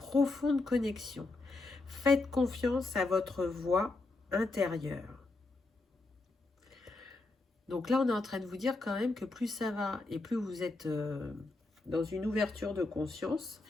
connexion. Faites confiance à votre voix intérieure. Donc là, on est en train de vous dire quand même que plus ça va et plus vous êtes dans une ouverture de conscience,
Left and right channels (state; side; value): quieter; right; 3.3 dB